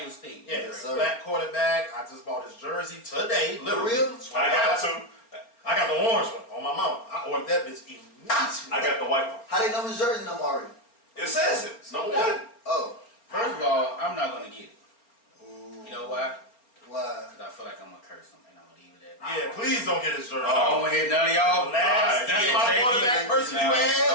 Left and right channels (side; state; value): right; late; 4.3 ms